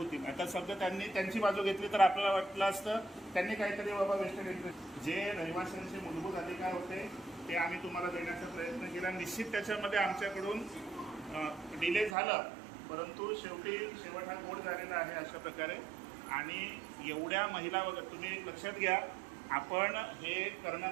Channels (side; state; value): left; drops out; at 12.2 s